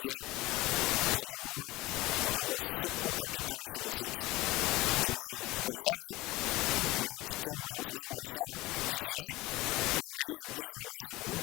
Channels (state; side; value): quieter; right; 20.0 dB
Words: yamekuwa kidonda suku katika shule zetu. Tumekubaliana na kitengo cha usalama hasa DCI kuangalia vile wanaweza